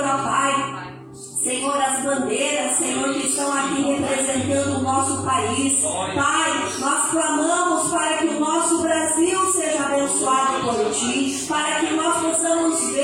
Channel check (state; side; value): identical; both; correlation 1.00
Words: ó Pai, Senhor, as bandeiras, Senhor, que estão aqui representando o nosso país. Pai, nós clamamos para que o nosso Brasil seja abençoado por Ti, para que nós possamos